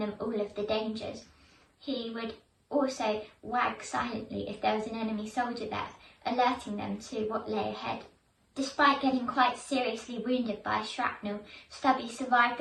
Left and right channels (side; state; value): both; identical; correlation 1.00